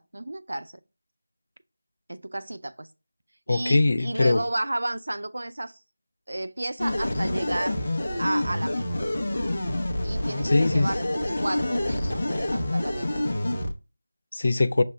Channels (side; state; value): both; inverted; correlation -0.97